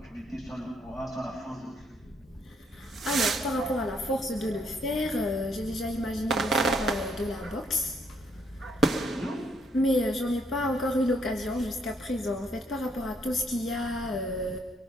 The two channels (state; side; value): normal; both; correlation 0.70